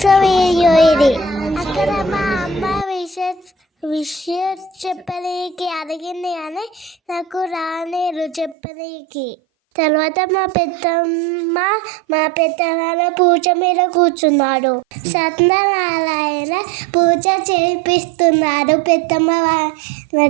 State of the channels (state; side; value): drops out; left; at 8.6 s